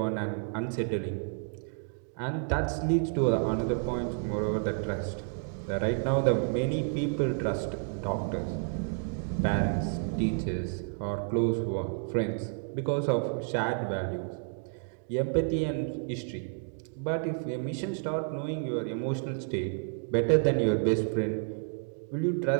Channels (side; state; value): left; silent; 57 dB below the other